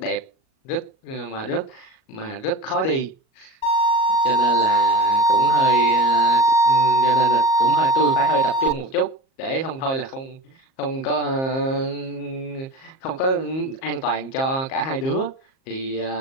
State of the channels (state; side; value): late; right; 38 ms